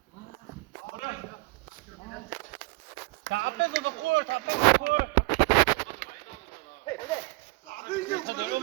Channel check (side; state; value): left; quieter; 25.9 dB